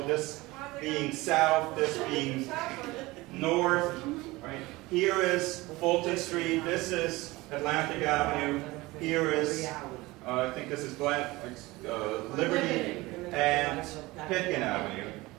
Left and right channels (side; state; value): left; quieter; 20.9 dB